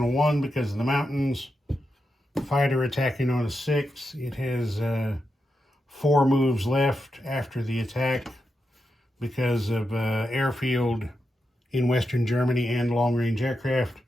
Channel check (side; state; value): both; normal; correlation 0.87